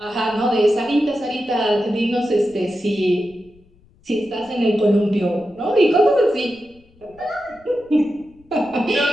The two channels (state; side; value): noise; left; rumble, 29 dB below the sound